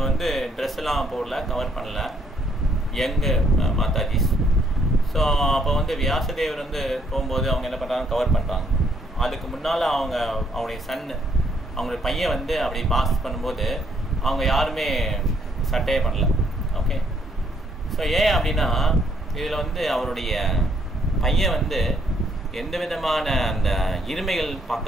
வந்து ட்ரெஸ் எல்லாம் போடல, கவர் பண்ணல. யங்கு மாதாஜிஸ். ஸோ அப்போ வந்து வியாசதேவர் வந்து போகும்போது அவங்க என்ன பண்ணுறாங்க, கவர் பண்ணுறாங்க. அதுக்கு முன்னால் அவங்களுடைய சன்னு, அவங்களுடைய பையன் வந்து அப்படி பாஸ் பண்ணும்போது அவங்க யாருமே சட்டையே பண்ணல. ஓகே, ஸோ ஏன் அப்படின்னா இதில் வந்து அவருடைய பையன் வந்து எந்த விதமான அந்த இருமைகள்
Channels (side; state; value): both; normal; correlation 0.69